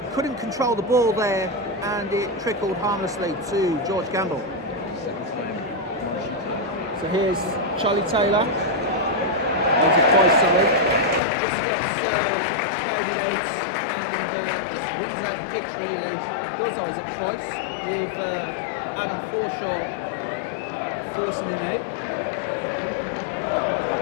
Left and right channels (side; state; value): right; drops out; at 11.2 s